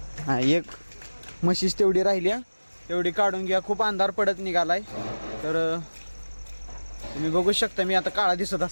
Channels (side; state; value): both; inverted; correlation -1.00